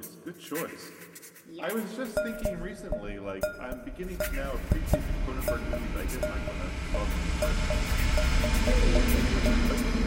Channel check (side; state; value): both; identical; correlation 1.00